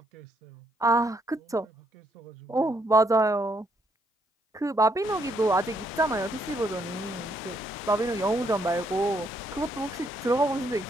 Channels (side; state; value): both; normal; correlation 0.73